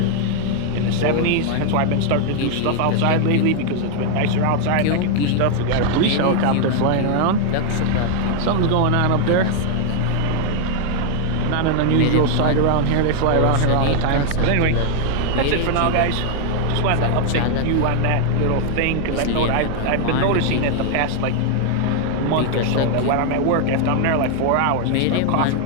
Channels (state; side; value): different; both; correlation 0.00